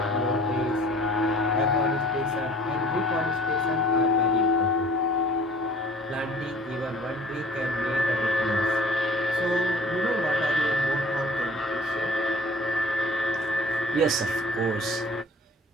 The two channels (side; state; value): both; normal; correlation 0.49